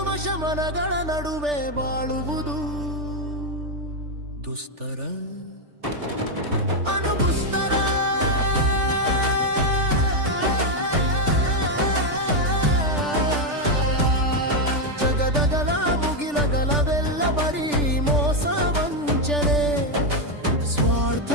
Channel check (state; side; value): late; left; 3.4 ms